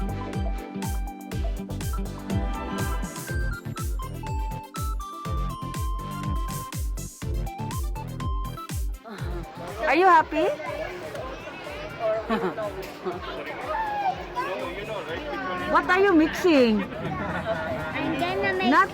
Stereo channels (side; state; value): both; identical; correlation 1.00